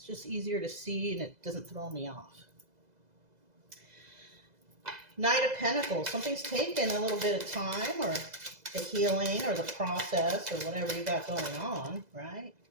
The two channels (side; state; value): left; late; 2.0 ms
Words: just easier to see and it doesn't throw me off. Knight of Pentacles. Something's taken a little bit of time, or the healing or the process or whatever you got going on, right?